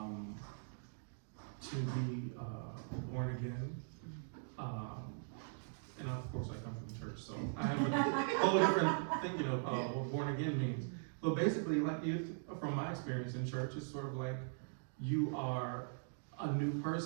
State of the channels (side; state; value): left; silent; digital silence